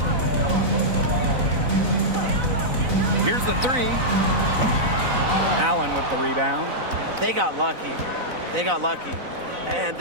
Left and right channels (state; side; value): late; left; 4.0 ms